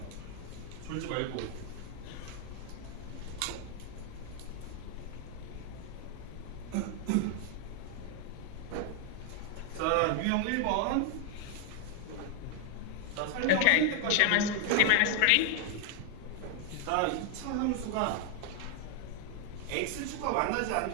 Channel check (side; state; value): both; different; correlation 0.00